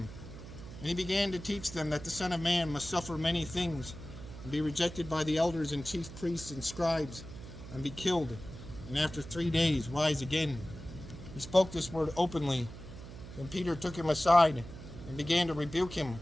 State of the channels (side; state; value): right; noise; hum, 13 dB below the sound